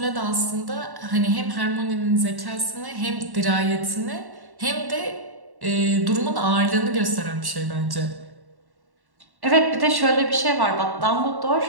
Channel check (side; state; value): left; late; 1.1 ms